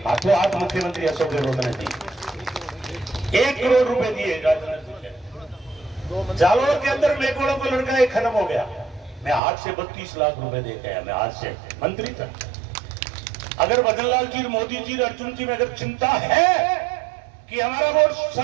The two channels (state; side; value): drops out; left; at 9.4 s